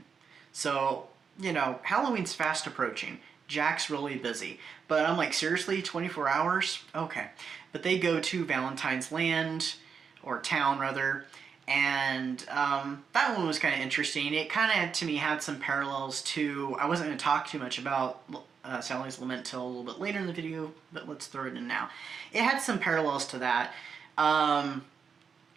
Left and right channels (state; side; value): quieter; left; 6.2 dB